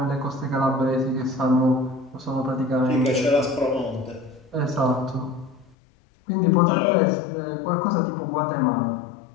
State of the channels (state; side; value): drops out; right; at 5.8 s